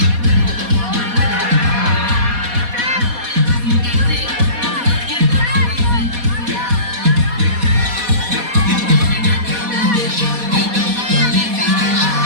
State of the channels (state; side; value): late; left; 4.2 ms